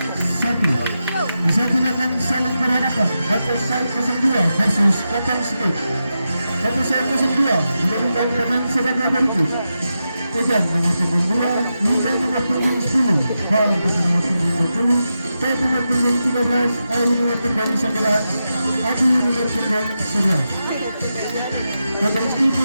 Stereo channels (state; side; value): inverted; both; correlation -0.89